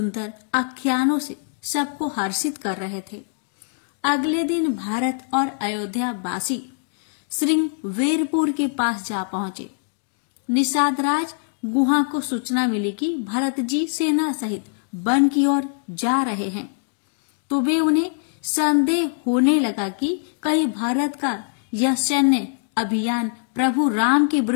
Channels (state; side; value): silent; right; digital silence